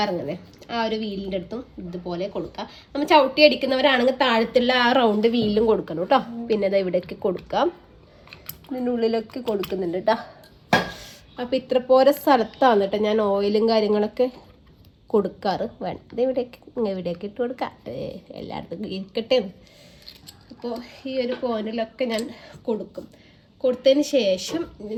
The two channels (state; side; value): identical; both; correlation 1.00